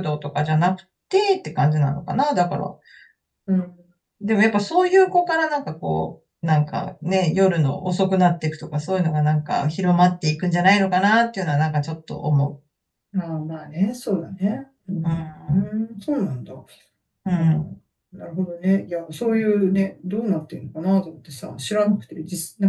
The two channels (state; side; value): identical; both; correlation 1.00